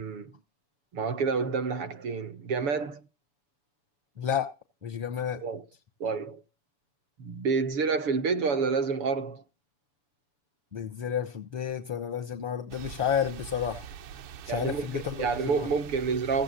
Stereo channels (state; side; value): late; left; 7.0 ms